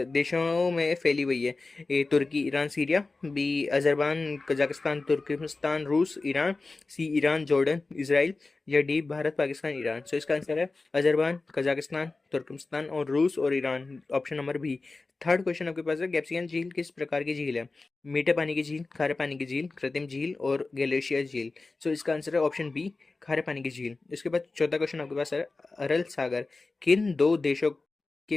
देशों में फैली हुई है? A Turkey, Iran, Syria, B Azerbaijan, Kazakhstan, Turkmenistan, रूस, Iran, C Iran, Jordan, Israel या डी भारत, पाकिस्तान, ईरान। इसका आंसर है अजरबैजान, कजाकिस्तान, तुर्कमेनिस्तान और रूस और Iran, option number B. Third question आपके पास है, कैप्सिकन झील किस प्रकार की झील है? मीठे पानी की झील, खारे पानी की झील, कृत्रिम झील और ग्लेशियर झील। इसका आंसर है ऑप्शन बी, खारे पानी की झील। इसके बाद चौथा क्वेश्चन आपके पास है, अरल सागर किन दो देशों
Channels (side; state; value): right; quieter; 3.6 dB